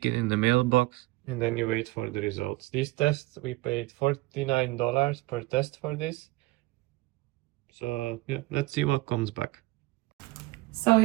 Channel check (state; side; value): quieter; left; 20.8 dB